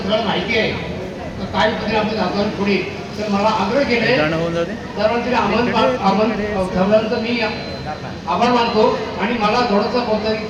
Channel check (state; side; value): identical; both; correlation 1.00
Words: सगळं माहिती आहे तर काय पद्धतीने आपण जातो पुढे. तर मला आग्रह केले सर्वांचे आमंत्रण मी आभार मानतो आणि मला थोडंसं बोलतं की